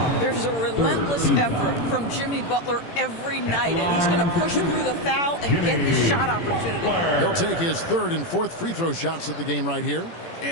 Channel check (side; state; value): right; late; 18 ms